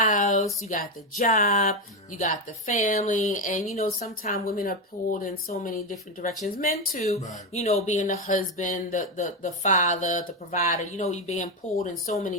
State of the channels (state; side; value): normal; both; correlation 0.10